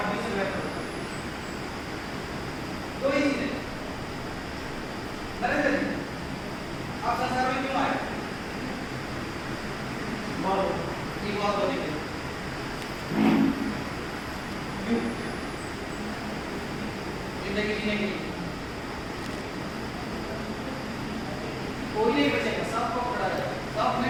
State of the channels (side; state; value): both; identical; correlation 1.00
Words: में बदल। दो ही चीजें। नरेंद्र जी, आप संसार में क्यों आए? बहुत होने के लिए। जिंदगी जीने के लिए कोई नहीं बचेगा, सबको पकड़ा जाएगा। सब ने